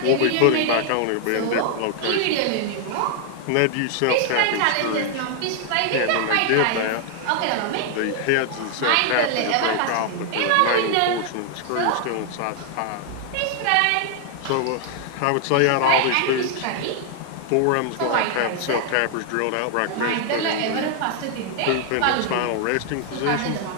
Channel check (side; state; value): both; different; correlation 0.00